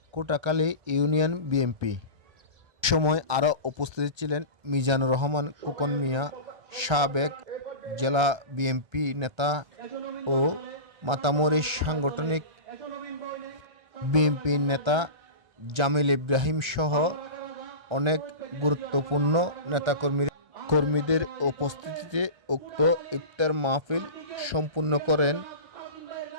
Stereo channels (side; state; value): left; late; 1.3 ms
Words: কোটাখালী ইউনিয়ন বিএনপি। সময় আরও উপস্থিত ছিলেন মিজানুর রহমান খোকন মিয়া, সাবেক জেলা বিএনপি নেতা ও মাতামরি সাংগঠনিক বিএনপি নেতা জামিল ইব্রাহিম সহ অনেক গুরুত্বপূর্ণ নেতাকর্মীদের উপস্থিতিতে উক্ত ইফতার মাহফিল সম্পূর্ণ করেন।